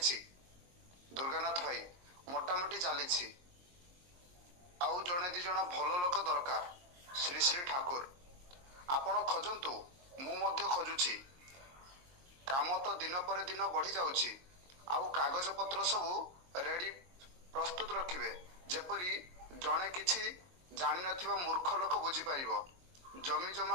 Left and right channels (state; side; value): late; left; 22 ms